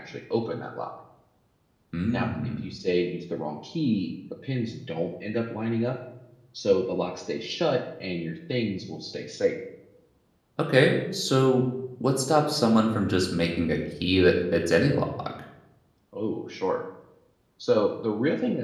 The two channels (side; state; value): both; identical; correlation 1.00